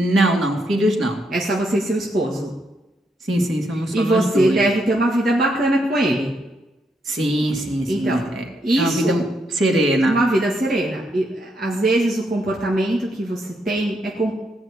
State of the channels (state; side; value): normal; both; correlation 0.78